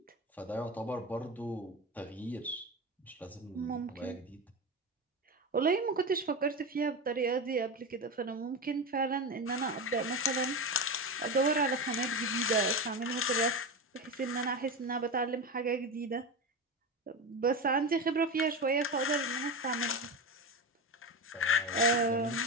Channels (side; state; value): both; normal; correlation 0.20